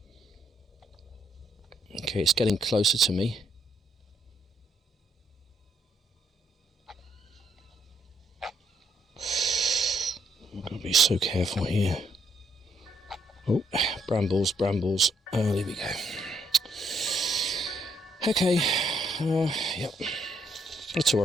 Okay, it's getting closer to me. I've got to be so careful here. Oh, brambles, brambles. Oh, there we go. Okay, yep. Not to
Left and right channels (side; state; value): both; normal; correlation 0.73